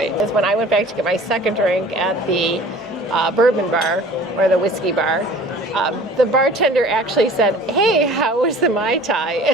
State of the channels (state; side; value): normal; both; correlation 0.46